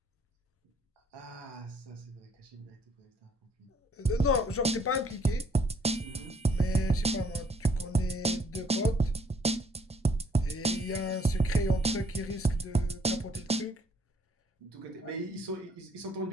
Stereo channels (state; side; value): normal; both; correlation 0.65